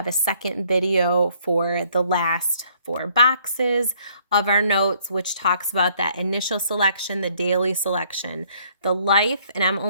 a second video for the last 4 boxes of our notes, which talks about that initial selection, the daily selection, the life, and I'm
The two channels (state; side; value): inverted; both; correlation -0.64